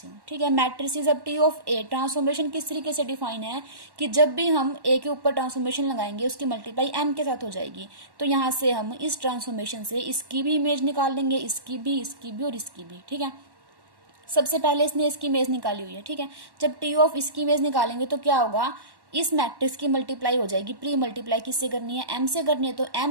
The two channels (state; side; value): late; left; 1.1 ms